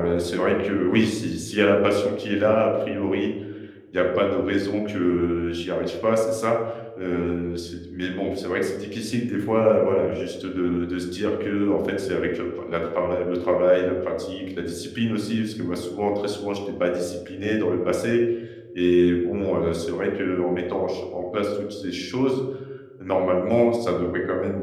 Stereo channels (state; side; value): identical; both; correlation 1.00